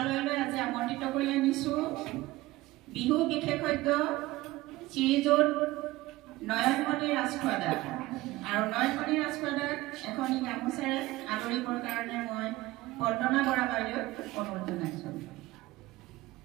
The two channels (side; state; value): left; quieter; 18.5 dB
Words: আজি আমন্ত্ৰিত কৰি আনিছোঁ বিহু বিশেষজ্ঞ শ্ৰীযুত নয়নমণি ৰাজখোৱাদা আৰু নয়নমণি ৰাজখোৱাদাক এখন গামোচাৰে আদৰিবৰ কাৰণে মই বন্দনা বৰা বাইদেউক অনুৰোধ জনাইছোঁ।